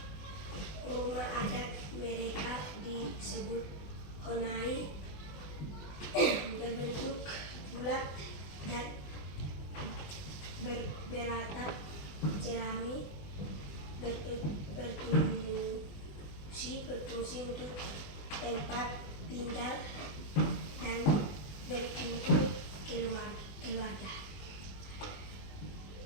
Rumah adat mereka disebut honai, berbentuk bulat dan beratap jerami, berfungsi untuk tempat tinggal dan berkumpul keluarga.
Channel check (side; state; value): right; late; 20 ms